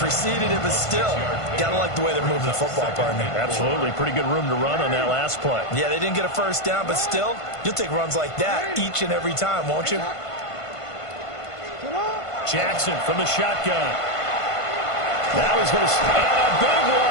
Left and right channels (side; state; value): right; late; 1.5 ms